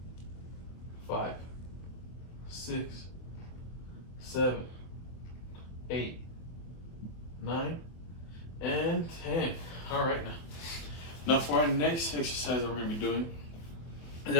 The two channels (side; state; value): right; late; 24 ms